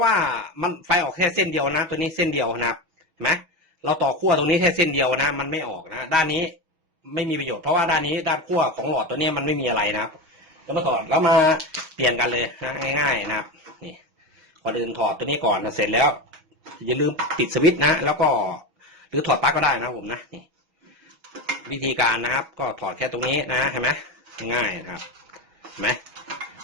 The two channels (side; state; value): left; late; 6.2 ms